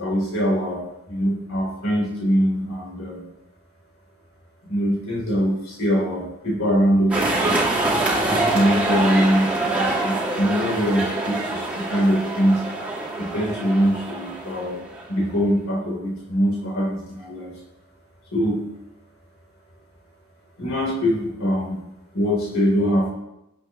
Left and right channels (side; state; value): both; normal; correlation 0.71